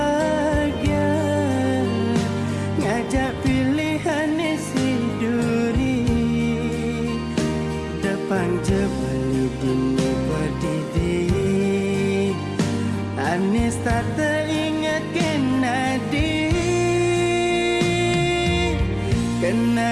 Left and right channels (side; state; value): both; identical; correlation 1.00